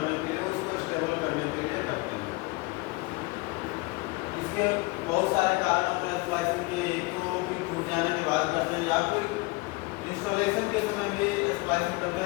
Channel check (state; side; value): quieter; right; 24.6 dB